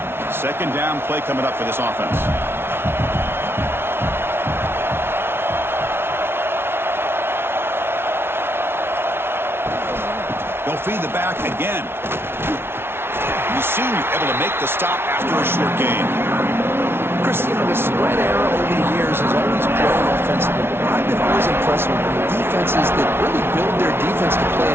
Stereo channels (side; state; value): left; late; 0.12 ms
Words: 2nd down play coming up for this offense. They'll feed the back again. The senior able to make the stop after a short gain. Chris, you know, the spread era over the years has always grown offensively, but I've been always impressed with the defenses that really build their defense to play